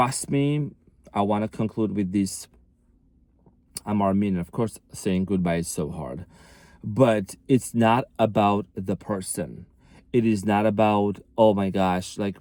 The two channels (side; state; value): both; identical; correlation 1.00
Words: me, I want to conclude with this. I'm Armin. Of course, saying goodbye is so hard. But it's not about the person. It is not about, oh my gosh,